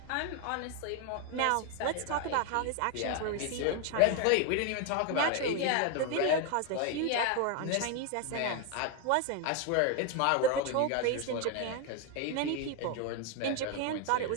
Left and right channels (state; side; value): different; both; correlation 0.01